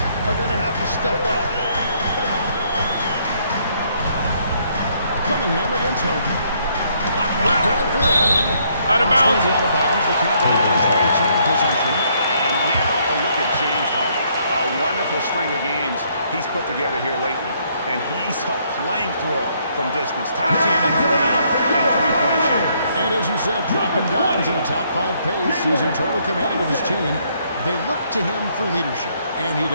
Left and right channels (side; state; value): both; inverted; correlation -0.69